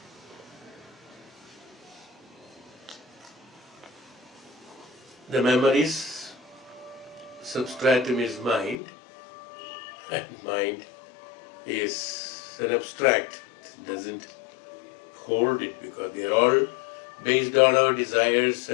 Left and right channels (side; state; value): right; drops out; at 8.8 s